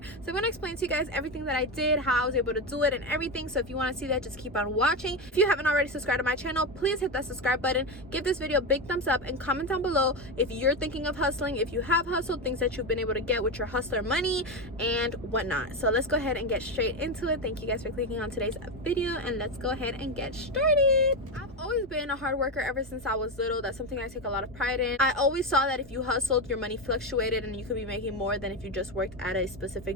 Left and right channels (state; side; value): normal; both; correlation 0.13